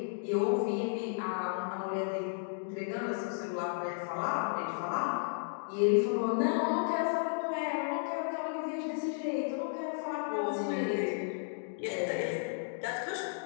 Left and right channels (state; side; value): silent; right; digital silence